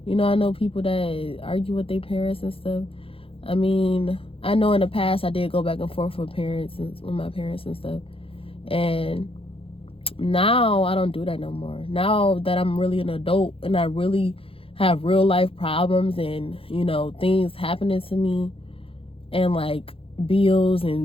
I know people that argue with their parents and stuff. I mean, I know in the past I did go back and forth with my parents and stuff. And now I don't do that no more. Now that I'm really an adult and I really have real life problems and, things happening to me, and like bills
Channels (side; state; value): right; late; 0.27 ms